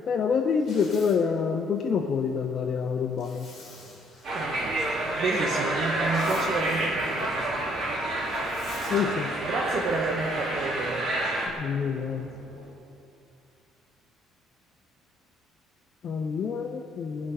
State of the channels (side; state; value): both; normal; correlation 0.65